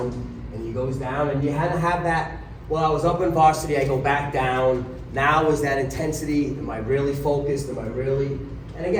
and he goes down, and you had to have that, well, I was up in varsity, I go back down, now is that intensity, am I really focused, am I really, and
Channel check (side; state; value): both; identical; correlation 1.00